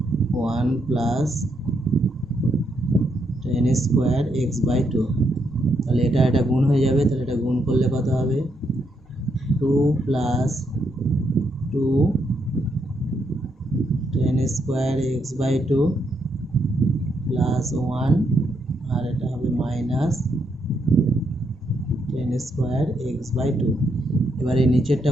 1 plus tan square x/2। তাহলে এটা গুণ হয়ে যাবে, তাহলে এটা গুণ করলে কত হবে, 2 plus 2 tan square x/2 plus 1, আর এটা হবে মাইনাস tan স্কোয়ার x/2। এবারে নিচেরটা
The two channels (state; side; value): normal; both; correlation 0.78